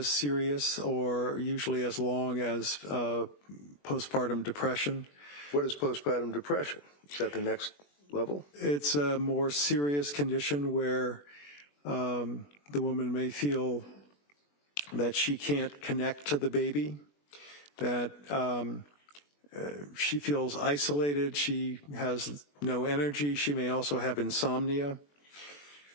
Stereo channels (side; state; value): right; late; 21 ms